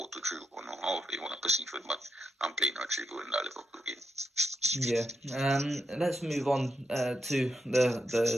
or however you want to perceive it, but I'm playing Rodrigo in that Liverpool game. Yeah. Let's move on to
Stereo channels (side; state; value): both; normal; correlation 0.84